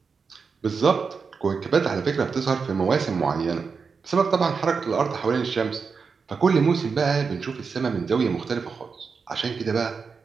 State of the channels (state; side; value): quieter; left; 5.3 dB